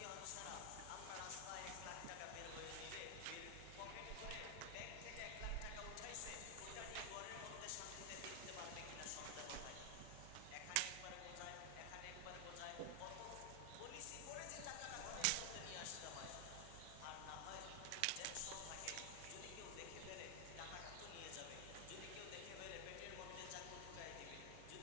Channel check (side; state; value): both; different; correlation 0.00